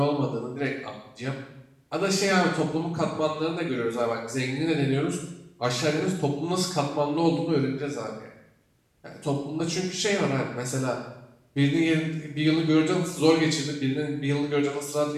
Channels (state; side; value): identical; both; correlation 1.00